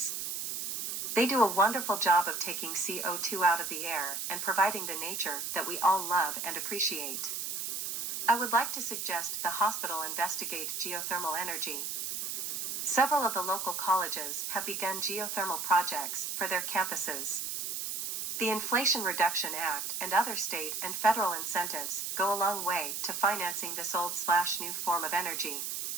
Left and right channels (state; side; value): noise; right; hiss, 3 dB below the sound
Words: They do a wonderful job of taking CO2 out of the air and providing the nature that we all love and appreciate. I would like to suggest the hospital investigate geothermal energy. Several of the local colleges have begun geothermal projects for their campuses. The Inflation Reduction Act and other state and federal incentives go a long way to financing this old/new form of energy.